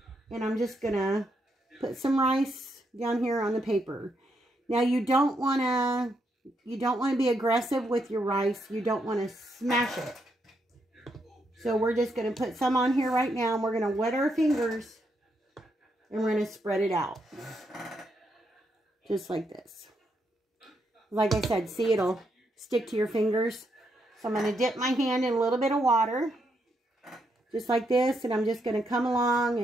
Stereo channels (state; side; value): normal; both; correlation 0.79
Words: and I'm just going to put some rice down here on the paper. Now you don't want to be aggressive with your rice. You don't want to smash it. So we're just going to put some on here right now, and we're going to wet our fingers, and we're going to spread it out. Just like this. Like I said, see, it'll stick to your fingers. So I'm going to dip my hand in a little bit of water, just like this, and I'm just going to come along